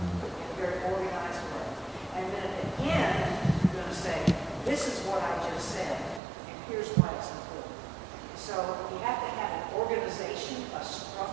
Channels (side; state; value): left; drops out; at 6.2 s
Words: in a very organized way. And then at the end, you're going to say, this is what I just said, and here's why it's important. So you have to have an organization, a